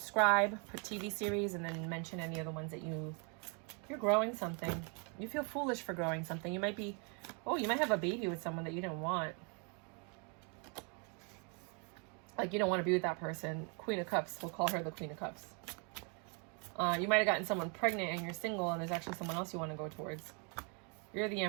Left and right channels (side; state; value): left; quieter; 36.6 dB